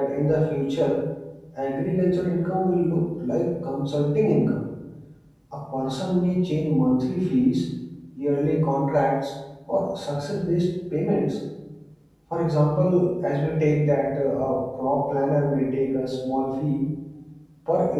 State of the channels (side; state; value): both; identical; correlation 1.00